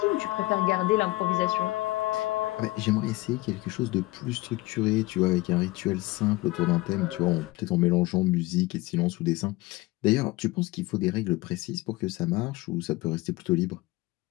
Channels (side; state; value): right; quieter; 20.2 dB